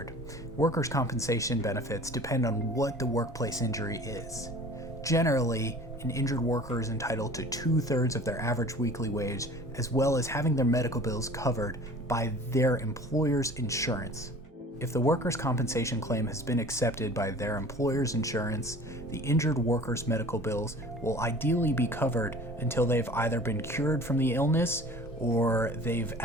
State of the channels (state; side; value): normal; both; correlation 0.44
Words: Workers' compensation benefits depend on what the workplace injury is. Generally, an injured worker is entitled to 2/3 of their average weekly wage, as well as having their medical bills covered by their employer's insurance. If the workers' compensation claim has been accepted by their employer's insurance, the injured worker's medical bills will ideally be covered until they've either been cured from the illness or they've